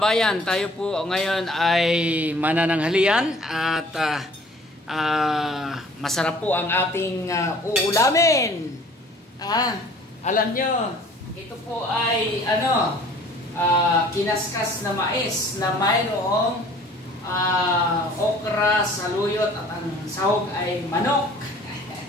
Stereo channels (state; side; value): normal; both; correlation 0.52